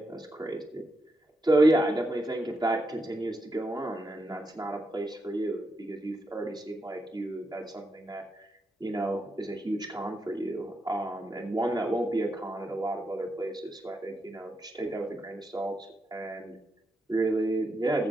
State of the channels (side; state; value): both; normal; correlation 0.83